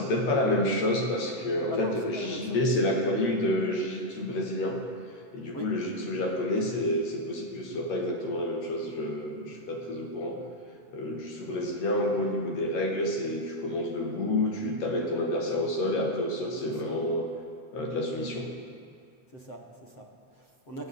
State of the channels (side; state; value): right; late; 7.7 ms